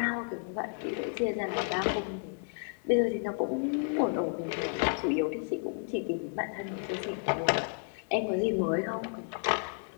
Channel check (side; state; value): right; silent; 57 dB below the other